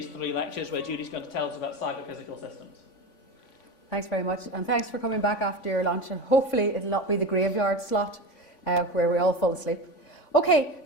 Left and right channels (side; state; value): right; late; 3.5 ms